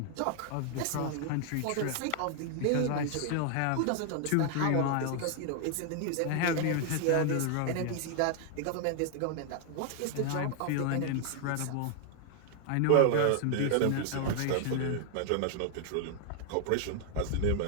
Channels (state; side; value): different; both; correlation 0.00